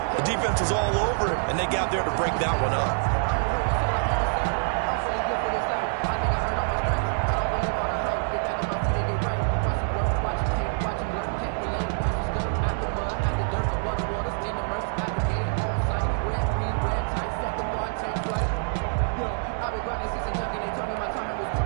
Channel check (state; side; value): silent; left; 61 dB below the other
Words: the defense was all over him, and they got there to break that one up.